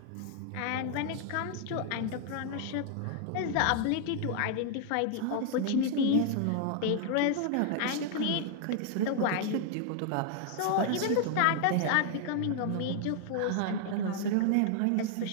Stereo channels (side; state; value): both; different; correlation 0.00